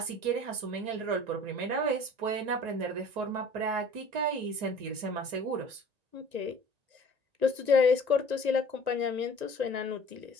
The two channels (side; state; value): left; late; 1.9 ms